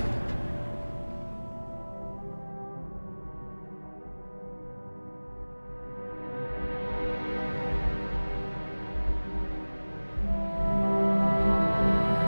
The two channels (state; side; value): inverted; both; correlation -1.00